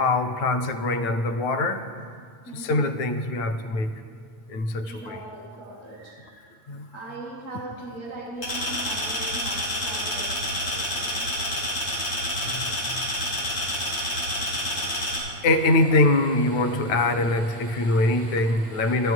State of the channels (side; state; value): right; late; 8.8 ms